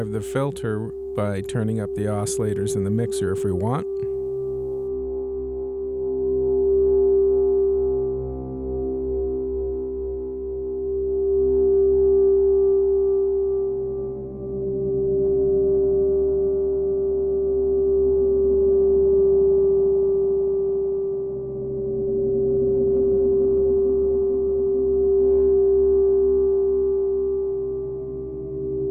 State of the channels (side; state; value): both; identical; correlation 1.00